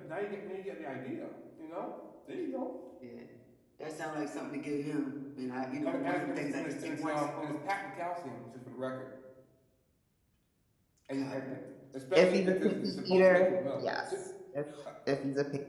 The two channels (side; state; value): both; identical; correlation 1.00